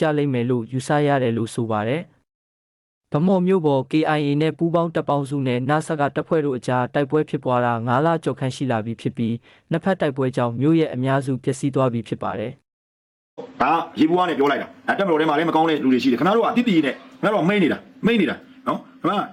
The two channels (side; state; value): both; identical; correlation 1.00